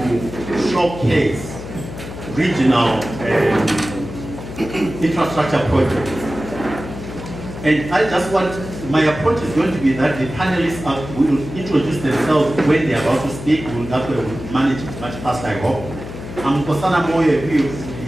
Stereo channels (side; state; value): left; noise; hum, 11 dB below the sound